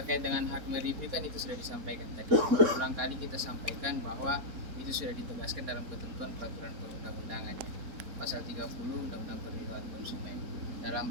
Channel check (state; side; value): late; left; 4.2 ms